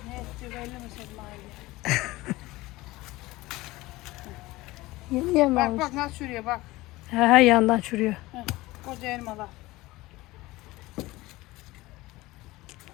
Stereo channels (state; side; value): quieter; right; 19.6 dB